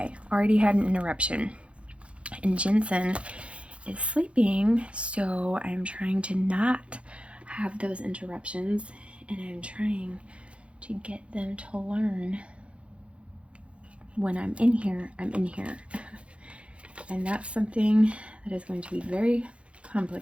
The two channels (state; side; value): late; left; 0.061 ms